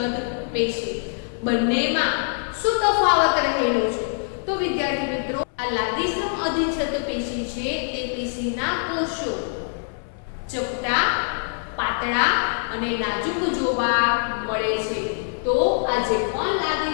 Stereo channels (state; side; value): silent; right; 63 dB below the other